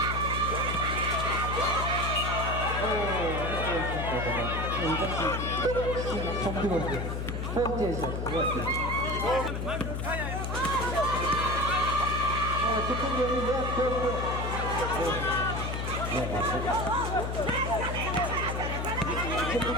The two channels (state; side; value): noise; left; hum, 3 dB below the sound